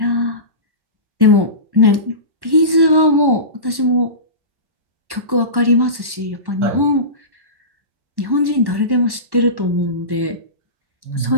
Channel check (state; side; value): late; left; 1.1 ms